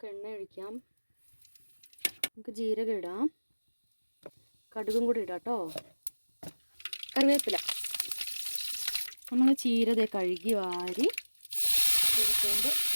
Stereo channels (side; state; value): both; inverted; correlation -1.00